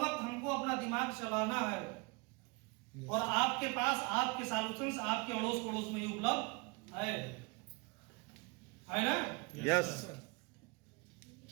हमको अपना दिमाग चलाना है, और आपके पास आपके सॉल्यूशंस आपके अड़ोस पड़ोस में ही उपलब्ध है ना? यस।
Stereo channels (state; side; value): quieter; left; 27.9 dB